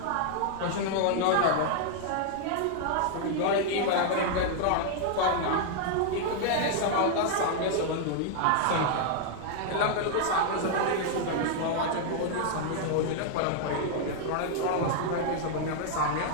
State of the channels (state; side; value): different; both; correlation 0.00